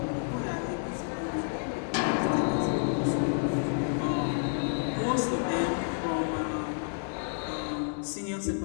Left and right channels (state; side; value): silent; right; 58 dB below the other